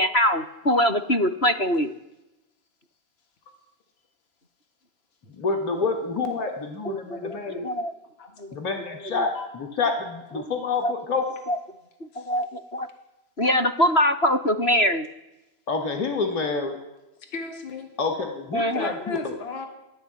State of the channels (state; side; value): late; right; 3.0 ms